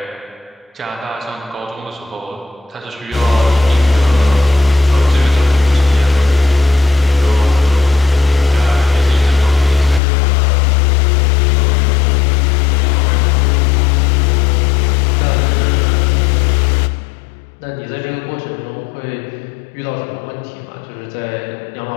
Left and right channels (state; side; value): drops out; right; at 10.0 s